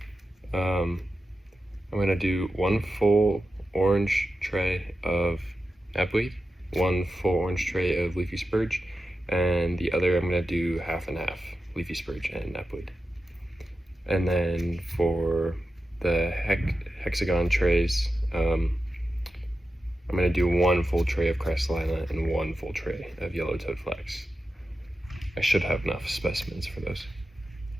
I'm going to do 1 full orange tray of knapweed, 1 full orange tray of leafy spurge, and the other I'm going to do half and half, leafy spurge and knapweed. And then for the hexagon trays, I'm going to do 1 full tray of crystalina and 1 full tray of yellow-toed flax. I should have enough specimens for those.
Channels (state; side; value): normal; both; correlation 0.91